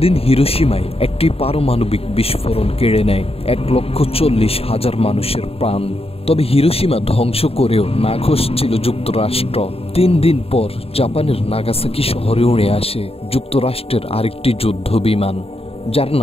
হিরোশিমায় একটি পারমাণবিক বিস্ফোরণ কেড়ে নেয় 1,40,000 মানুষের প্রাণ। তবে হিরোশিমা ধ্বংস করেও নাখোশ ছিল যুক্তরাষ্ট্র। 3 দিন পর জাপানের নাগাসাকি শহরে উড়ে আসে যুক্তরাষ্ট্রের আরেকটি যুদ্ধ বিমান, যার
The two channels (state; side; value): late; right; 0.28 ms